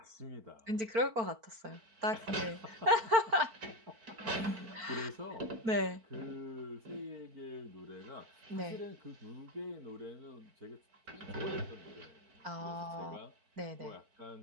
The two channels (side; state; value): left; late; 4.5 ms